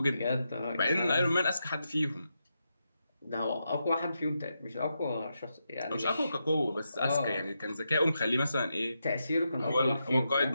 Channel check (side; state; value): both; inverted; correlation -0.85